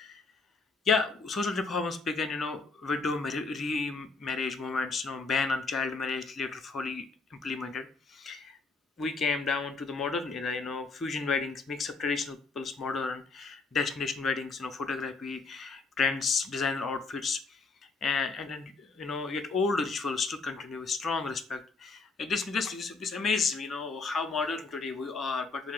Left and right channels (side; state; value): right; quieter; 4.1 dB